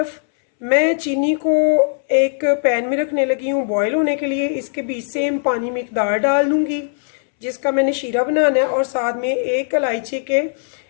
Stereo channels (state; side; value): silent; right; 67 dB below the other